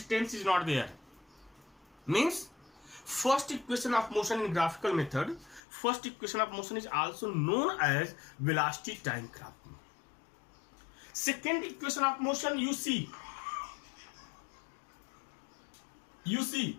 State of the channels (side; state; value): right; drops out; at 5.6 s